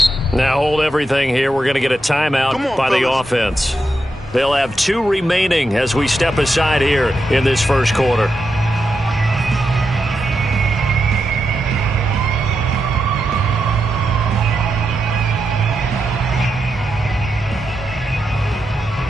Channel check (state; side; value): normal; both; correlation 0.86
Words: Now hold everything here. We're going to get a timeout by the offense. They'll have 2 remaining as we step aside here in this first quarter.